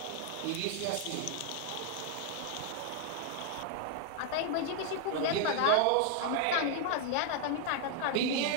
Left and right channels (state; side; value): different; both; correlation 0.00